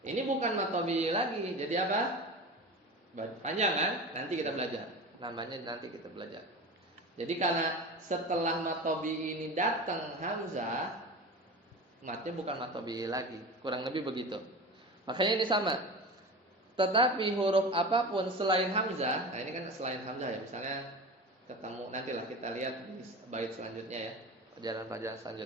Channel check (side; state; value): both; normal; correlation 0.31